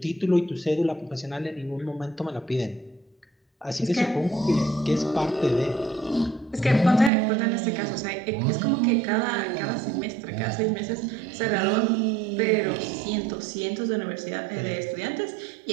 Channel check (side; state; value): left; drops out; at 7.1 s